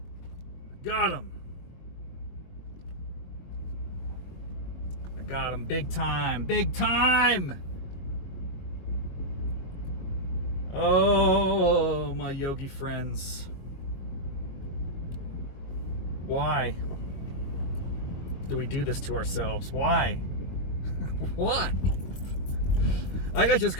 got him. I got him big time, big time! Oh, my yogi friends. Why do we do this to ourselves? Why? Why? I got just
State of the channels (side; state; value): right; late; 22 ms